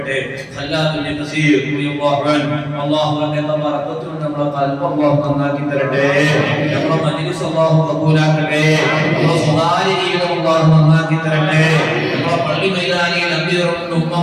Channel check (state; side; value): identical; both; correlation 1.00